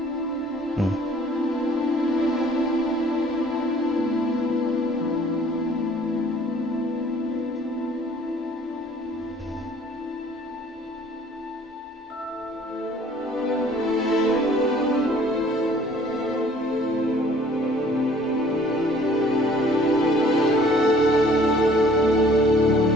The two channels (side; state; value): both; normal; correlation 0.55